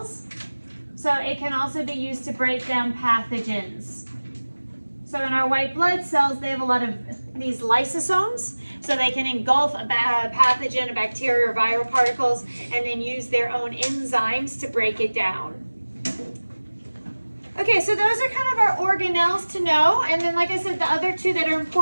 So it can also be used to break down pathogens. So in our white blood cells, they have a lot of these lysosomes. So they can engulf a pathogen, a bacteria, or viral particles, and then use their own enzymes to break it down. Okay, so those are kind of our organelles to know. And then, like I said, the other two that are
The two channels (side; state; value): both; inverted; correlation -1.00